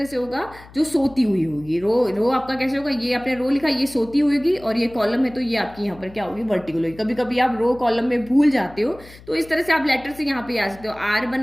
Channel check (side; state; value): left; noise; hum, 21 dB below the sound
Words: से होगा? जो सोती हुई होगी। रो आपका कैसे होगा? ये आपने रो लिखा, ये सोती हुई होगी, और ये कॉलम है तो ये आपकी यहाँ पर क्या होगी? वर्टिकल होगी। कभी कभी आप रो कॉलम में भूल जाते हो तो इस तरह से आप लेटर से यहाँ पे आ सकते हो। आर